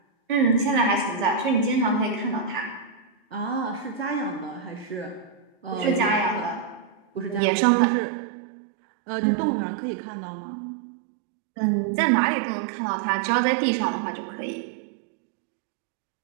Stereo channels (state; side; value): drops out; left; at 7.4 s